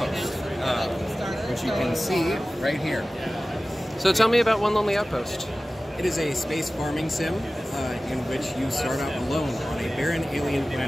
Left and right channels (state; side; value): normal; both; correlation 0.96